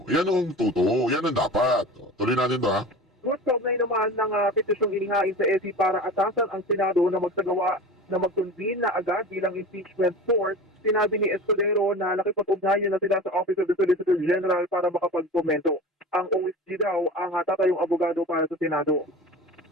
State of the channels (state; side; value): normal; both; correlation 0.34